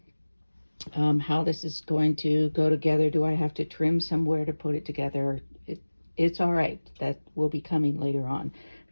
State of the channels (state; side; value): inverted; both; correlation -1.00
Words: how this is going to go together. Do I have to trim somewhere to put it together? It's all right. That will be coming later on. I